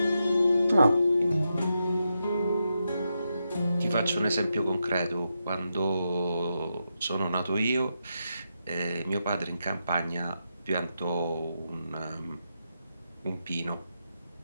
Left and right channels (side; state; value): both; inverted; correlation -0.85